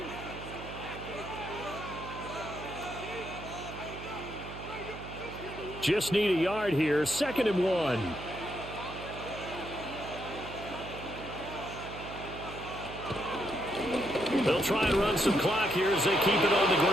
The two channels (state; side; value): noise; right; hum, 11 dB below the sound